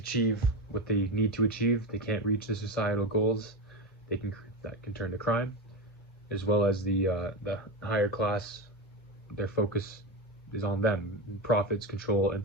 what they need to achieve. They can't reach the societal goals. That can turn to crime, as well as the higher class. Their focus is on them, profits, control,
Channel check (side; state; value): both; normal; correlation 0.17